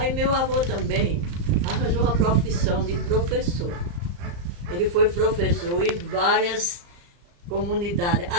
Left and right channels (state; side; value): late; left; 35 ms